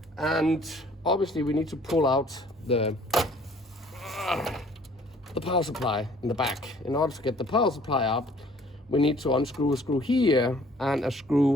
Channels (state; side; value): normal; both; correlation 0.56